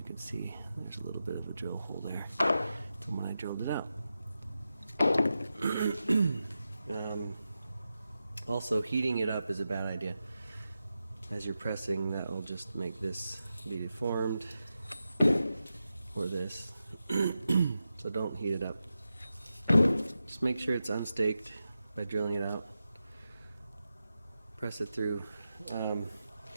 can see there's a little bit of a drill hole there from when I drilled it out. Also, heating it up is a bad idea. As you're pressing, that will just make this be deformed, or this. So don't heat it up. Just make sure it's unstaked by drilling it out. Press it through.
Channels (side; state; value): both; inverted; correlation -0.90